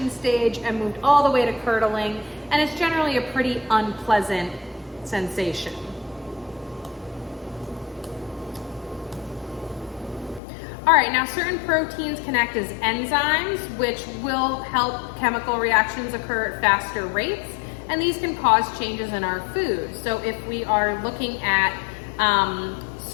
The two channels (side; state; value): right; drops out; at 10.4 s